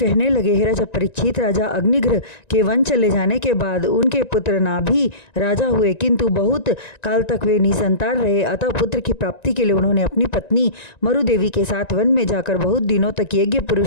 लगे, हे राजा परीक्षित, राजा अग्निग्रह के वन चले जाने के बाद उनके पुत्र नाभि राजा हुए, किंतु बहुत काल तक वे निसंतान रहे। अतः पुत्र की प्राप्ति के लिए उन्होंने अपनी पत्नी मरुदेवी के साथ वन में जाकर बहुत दिनों तक यज्ञ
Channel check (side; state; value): right; late; 1.9 ms